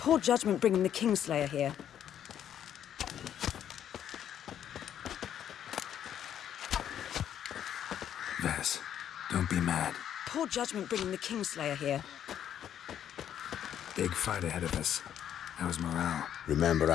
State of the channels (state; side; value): quieter; right; 9.9 dB